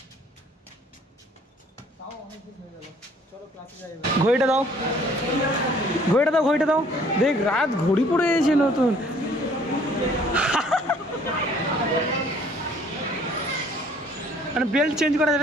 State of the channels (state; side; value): normal; both; correlation 0.57